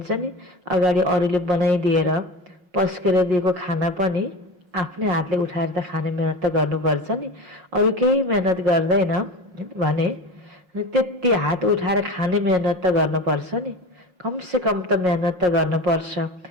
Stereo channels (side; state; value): left; late; 5.5 ms